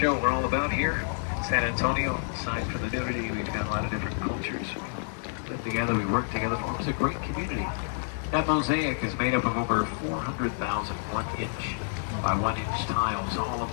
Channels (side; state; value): right; silent; digital silence